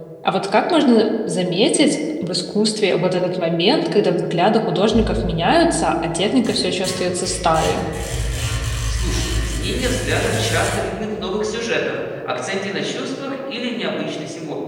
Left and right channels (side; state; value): both; identical; correlation 1.00